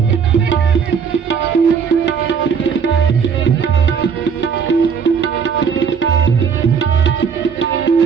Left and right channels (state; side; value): quieter; left; 6.6 dB